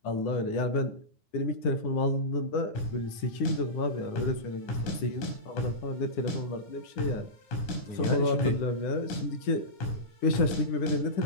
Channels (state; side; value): late; right; 9.9 ms